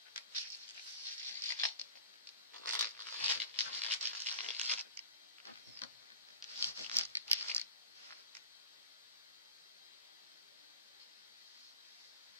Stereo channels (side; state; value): both; inverted; correlation -0.40